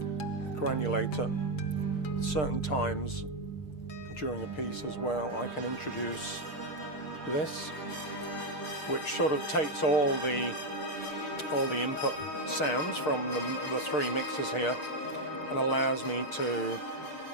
Granulator. Certain times during a piece as well, I can introduce this, which sort of takes all the input sounds from the three mixers here and allows me to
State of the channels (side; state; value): right; late; 6.6 ms